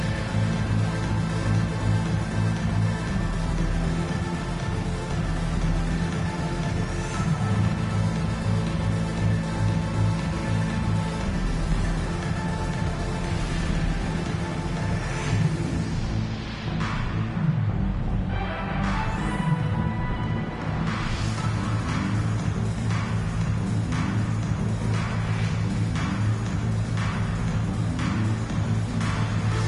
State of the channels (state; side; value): identical; both; correlation 1.00